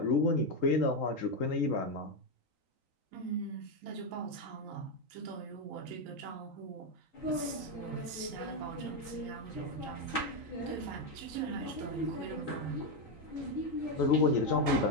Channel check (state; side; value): late; left; 3.8 ms